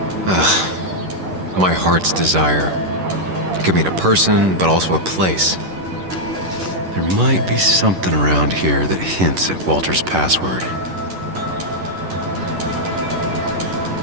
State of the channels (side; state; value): left; late; 11 ms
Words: My heart's desire. It could mean a person, but also a place. There might be something around here that hints at Walter's password.